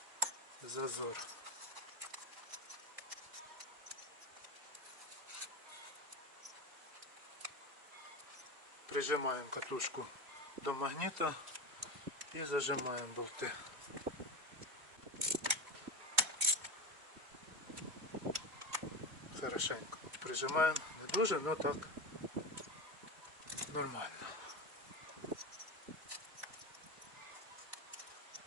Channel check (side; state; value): left; late; 2.2 ms